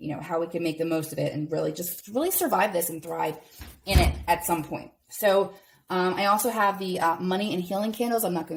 how we can make the most of it and really survive this and thrive in it at some point. So I also have the money and healing candles. I'm not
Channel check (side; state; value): both; identical; correlation 1.00